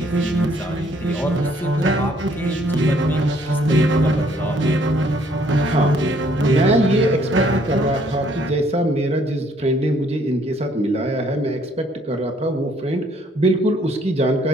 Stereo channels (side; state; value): both; normal; correlation 0.64